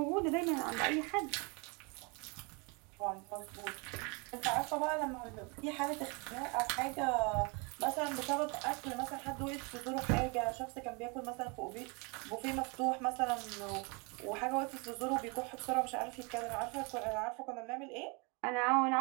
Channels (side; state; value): left; quieter; 31.0 dB